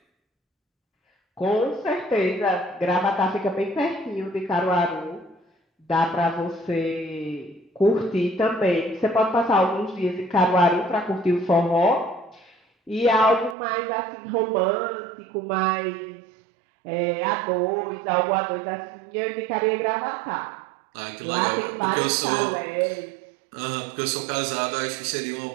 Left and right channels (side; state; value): left; drops out; at 13.6 s